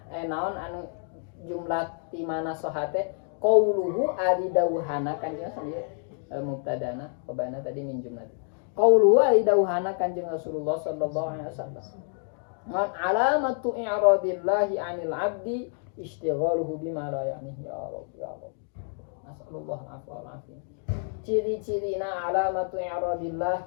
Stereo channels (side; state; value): right; silent; 59 dB below the other